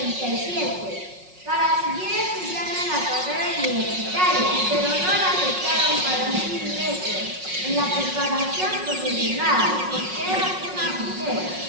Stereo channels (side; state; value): left; late; 5.4 ms